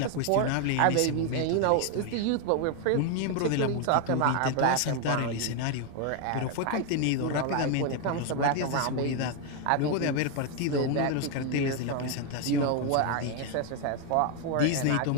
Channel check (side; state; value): both; different; correlation 0.01